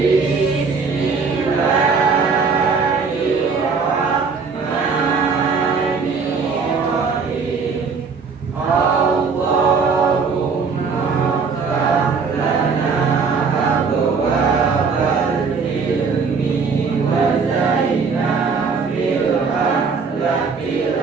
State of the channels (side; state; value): left; quieter; 5.1 dB